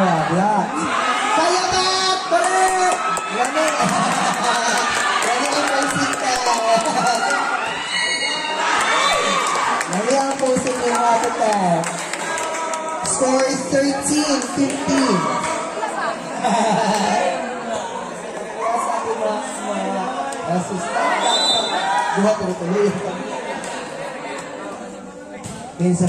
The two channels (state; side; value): identical; both; correlation 1.00